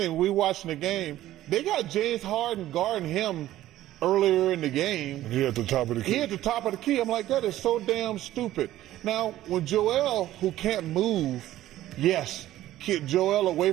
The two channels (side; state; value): left; quieter; 14.2 dB